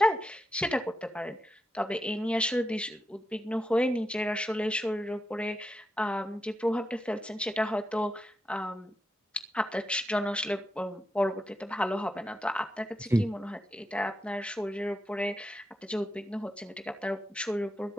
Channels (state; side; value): normal; both; correlation 0.86